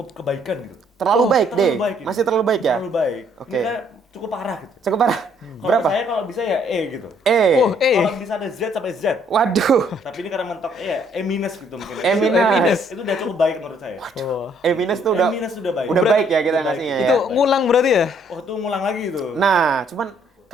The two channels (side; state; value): both; normal; correlation 0.65